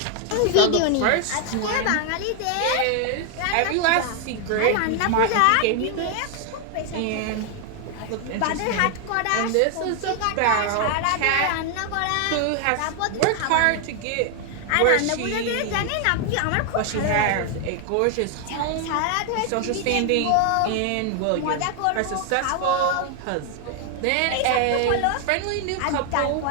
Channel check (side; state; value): both; different; correlation 0.00